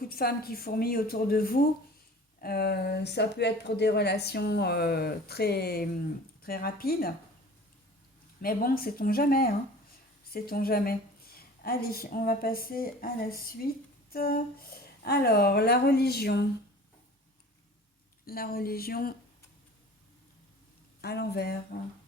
de femmes qui fourmillent autour de vous, ça peut être pour des relations très rapides. Mais bon, sait-on jamais, hein. Sait-on jamais. Allez, on va passer à la suite. Alors, la religion. La religion à l'envers.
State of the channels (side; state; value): both; normal; correlation 0.43